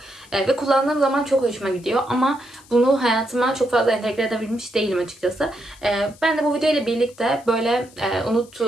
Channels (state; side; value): noise; left; hiss, 25 dB below the sound